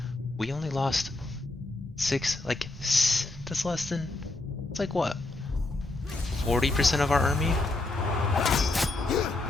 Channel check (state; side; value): quieter; right; 3.0 dB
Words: we only lost 6, like, that's less than, it's like what, 40% of our army?